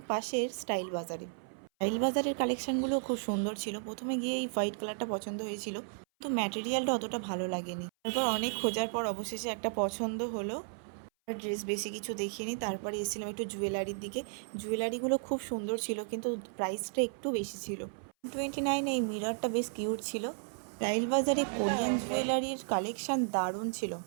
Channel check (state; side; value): silent; left; 55 dB below the other